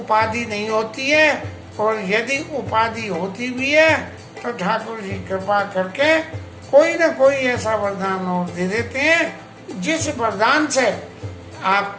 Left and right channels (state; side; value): identical; both; correlation 1.00